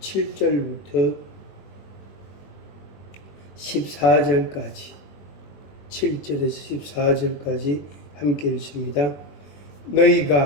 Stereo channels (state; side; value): late; right; 21 ms